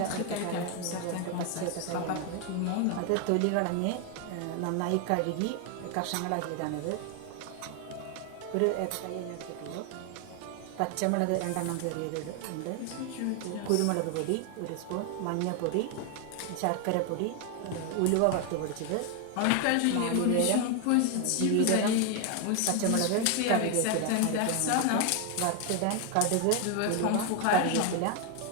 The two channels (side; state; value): both; different; correlation 0.00